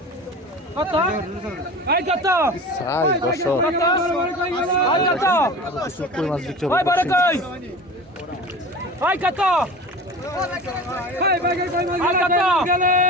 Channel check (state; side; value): normal; both; correlation 0.35